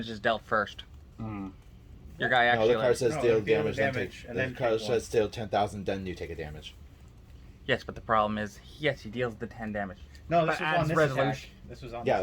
is dealt first. Mm. Your guy No, actually. the card Like, says No, deal you deal damage, the then damage, take. and The then card take says deal 10,000, then you take a damage. yes, but the problem is, yes, he deals the 10 damage. No, this But was on as this resolution- attack. This was on Yeah,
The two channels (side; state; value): both; identical; correlation 1.00